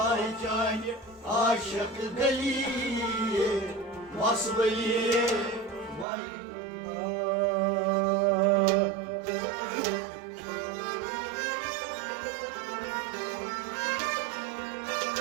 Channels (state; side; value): drops out; left; at 6.1 s